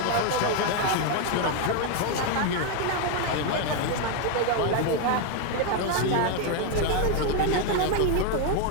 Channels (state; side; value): different; both; correlation 0.01